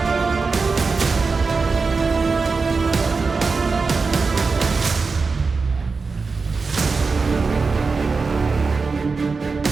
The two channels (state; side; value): quieter; left; 4.5 dB